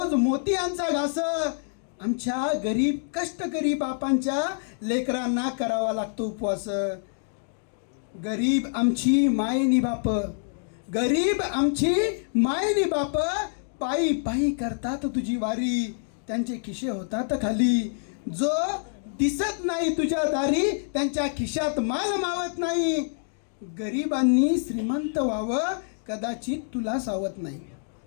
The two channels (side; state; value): right; silent; digital silence